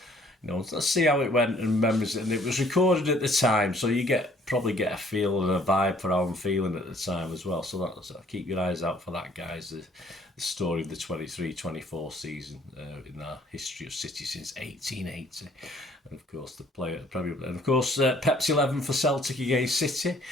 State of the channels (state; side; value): normal; both; correlation 0.59